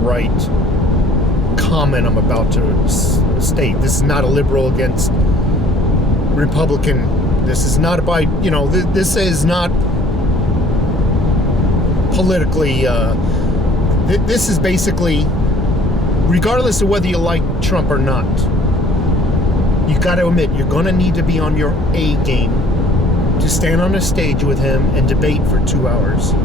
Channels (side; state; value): both; normal; correlation 0.54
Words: comment I'm about to state. This is not a liberal against Republican. This is not about, this is not politically, this is basically, regardless of whether you like Trump or not, you got to admit, you're going to need to be on your A game to stand on a stage with him and debate for 2 hours